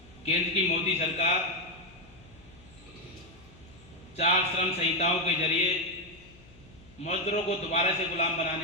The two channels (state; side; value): noise; left; hum, 24 dB below the sound